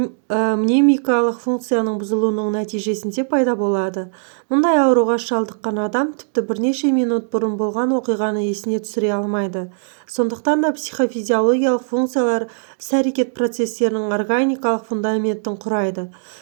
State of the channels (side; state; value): left; silent; 66 dB below the other